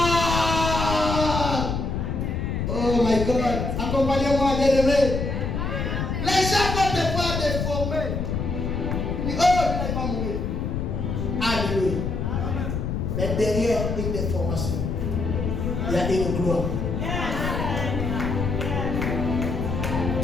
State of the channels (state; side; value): noise; left; rumble, 2 dB below the sound